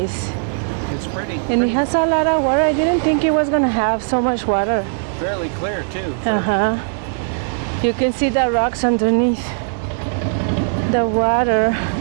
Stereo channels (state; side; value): silent; left; digital silence